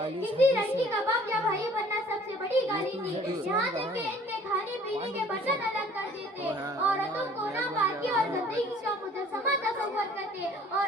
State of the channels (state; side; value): normal; both; correlation 0.54